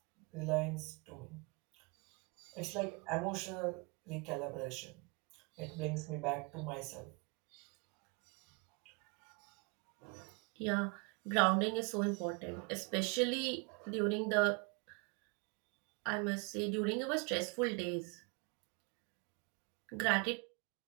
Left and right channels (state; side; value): quieter; left; 31.1 dB